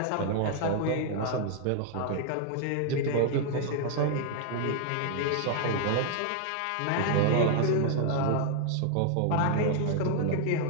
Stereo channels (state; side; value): different; both; correlation 0.00